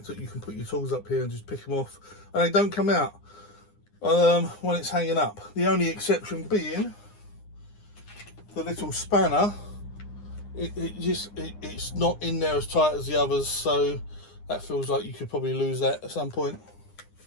that you can put your tools up here and just pick them off, and they don't come out when it's hanging up. The only exception being the little spanner. It's not in there as tight as the others, so that feels like you could probably lose that at some point.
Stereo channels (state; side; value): late; right; 9.8 ms